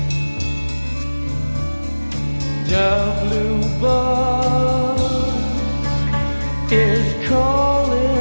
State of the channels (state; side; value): inverted; both; correlation -1.00